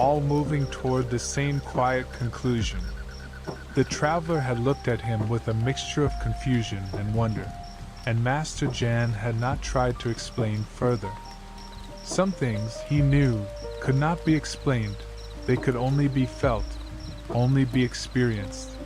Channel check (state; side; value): identical; both; correlation 1.00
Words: moving toward the same quiet conclusion." The traveler had looked at him with a mixture of confusion and wonder, and Master Jan had not tried to explain further. Some things, he knew, could not be explained, they could only be felt, only be experienced,